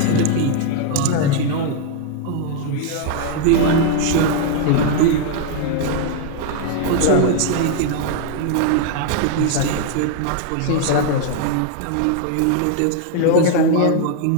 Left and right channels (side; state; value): both; different; correlation 0.00